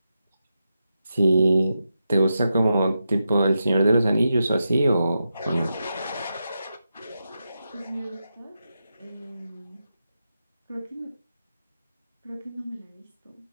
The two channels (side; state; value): both; inverted; correlation -0.88